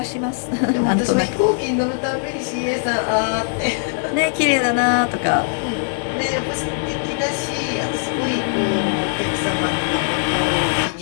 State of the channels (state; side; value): silent; right; digital silence